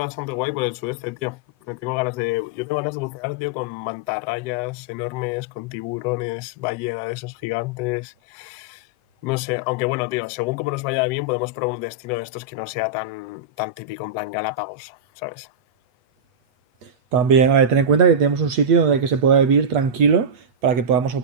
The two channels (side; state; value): left; late; 8.1 ms